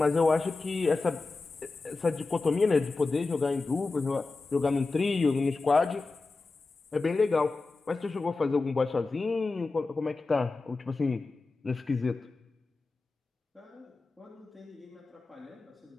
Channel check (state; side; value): quieter; right; 3.7 dB